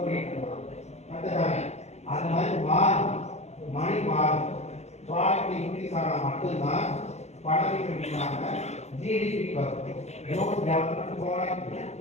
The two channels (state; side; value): late; right; 0.32 ms